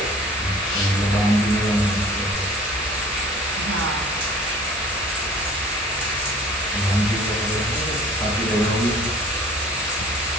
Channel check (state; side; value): normal; both; correlation 0.48